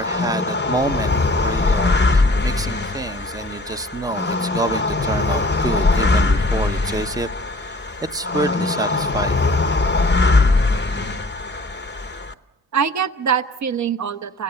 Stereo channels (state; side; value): normal; both; correlation 0.49